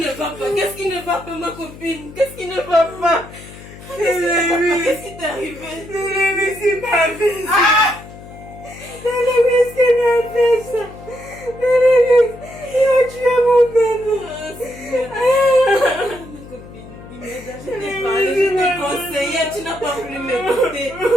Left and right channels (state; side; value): noise; left; hum, 17 dB below the sound